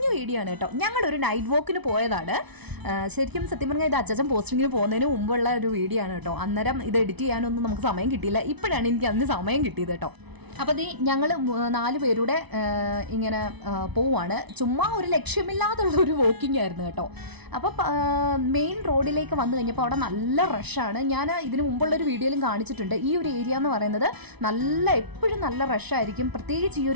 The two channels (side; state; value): left; late; 0.99 ms